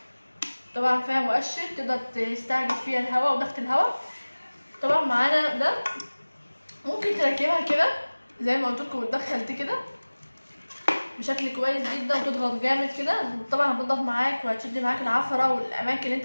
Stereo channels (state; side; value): inverted; both; correlation -1.00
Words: طبعا فيها مؤشر تقدر تستعجل فيها الهواء وضغط الهواء. طبعا معانا ده ممكن تركبها كده زي ما قلت لكم، وتدخل دي كده بشكل كويس جدا وتضغط جامد كده. طبعا هتنضف معاك وهتشد معاك العفره والاماكن اللي انت